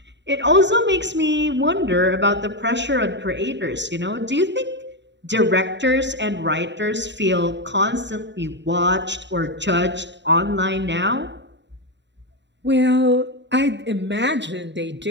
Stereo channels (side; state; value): left; late; 0.52 ms